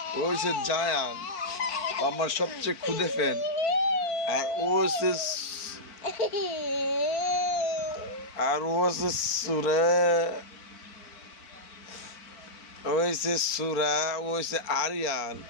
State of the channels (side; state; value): right; late; 4.5 ms